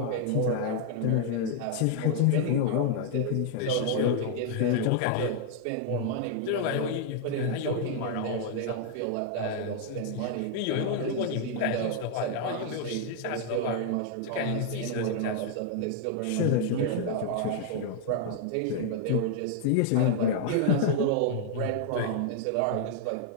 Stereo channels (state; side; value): different; both; correlation 0.00